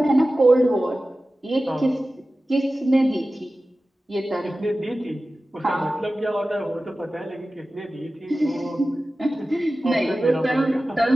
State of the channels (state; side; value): normal; both; correlation 0.95